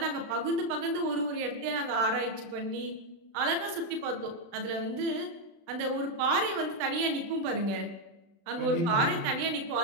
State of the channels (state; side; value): late; left; 35 ms